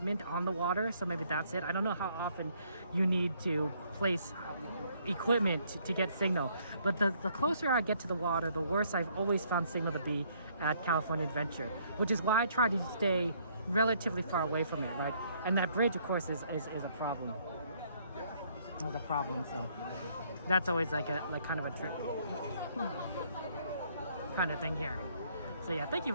on the water, so maybe that's it. I don't know how often you need to place equipment to get signal. But the closer I get to the water, the worse I've always found signal to be at California Adventure, which is why I try to stay relatively far away from it, right? And that bridge, of course, is a problem. It's a problem, so that's always like kind of a trick kind of thing here. So yeah, thank you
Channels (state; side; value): inverted; both; correlation -0.66